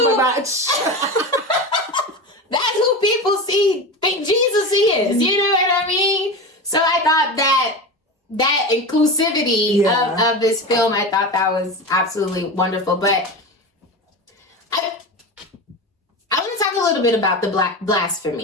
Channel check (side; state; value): both; normal; correlation 0.25